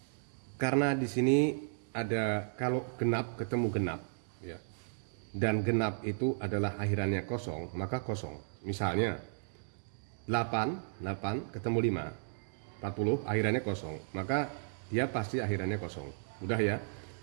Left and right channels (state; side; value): silent; left; digital silence